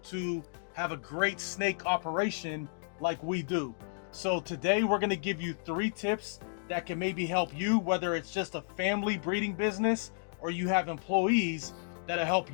to have a great snake operation like we do. So today we're gonna give you 3 tips that can maybe help you, whether it's just a family breeding business or you have employees, that'll help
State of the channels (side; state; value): right; silent; digital silence